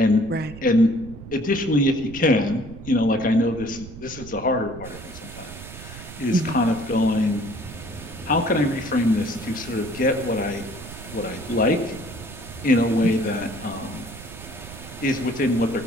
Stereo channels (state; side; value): noise; right; rumble, 14 dB below the sound